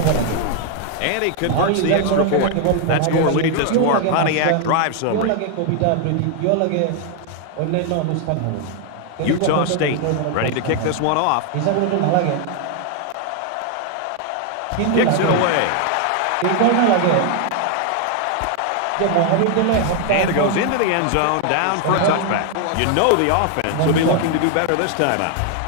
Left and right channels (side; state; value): both; different; correlation 0.00